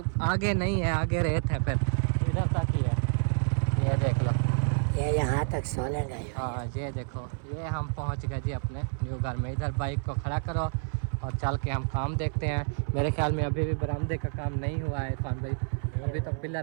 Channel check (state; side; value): silent; left; 59 dB below the other